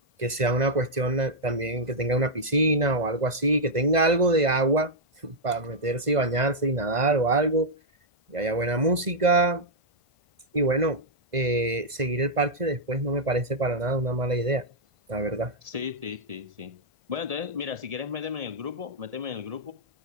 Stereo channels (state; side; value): late; left; 2.0 ms